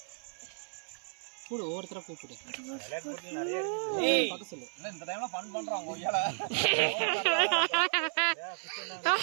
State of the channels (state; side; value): silent; left; 56 dB below the other